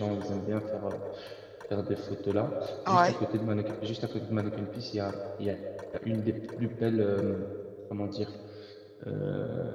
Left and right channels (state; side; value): identical; both; correlation 1.00